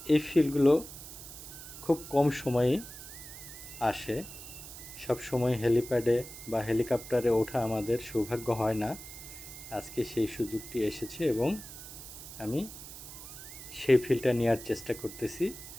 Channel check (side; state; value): right; noise; hiss, 13 dB below the sound